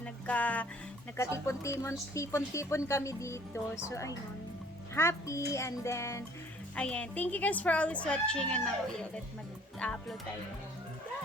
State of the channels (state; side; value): normal; both; correlation 0.56